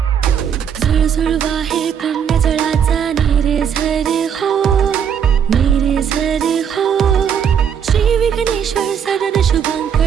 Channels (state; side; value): quieter; left; 7.9 dB